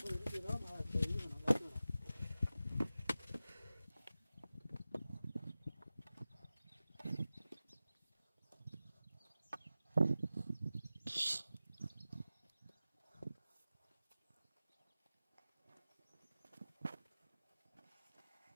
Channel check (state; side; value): inverted; both; correlation -0.95